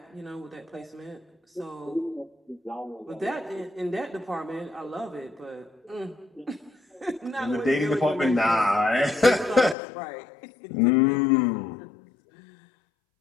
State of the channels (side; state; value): right; drops out; at 9.8 s